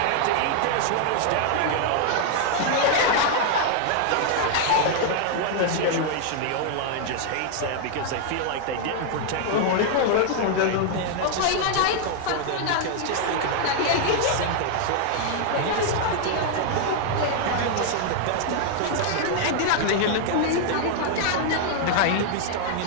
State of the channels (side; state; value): both; different; correlation 0.00